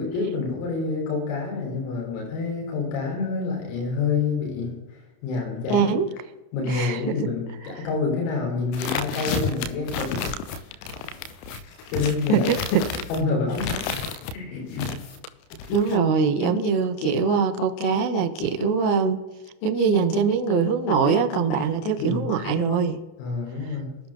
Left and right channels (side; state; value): right; late; 31 ms